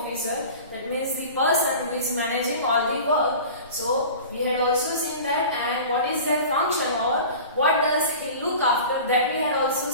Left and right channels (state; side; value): inverted; both; correlation -0.38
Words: that means the person who is managing all the work. So we had also seen that, and what is their function or what does he look after, that we had also